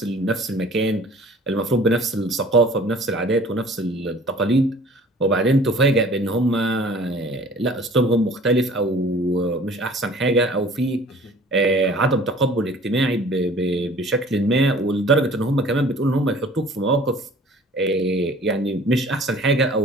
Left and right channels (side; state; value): both; normal; correlation 0.49